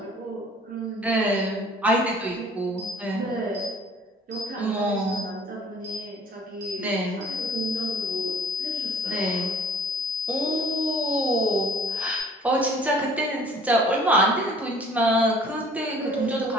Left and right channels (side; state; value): both; normal; correlation 0.52